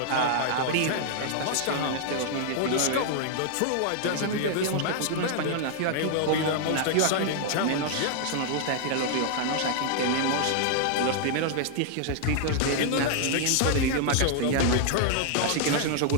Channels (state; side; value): different; both; correlation 0.00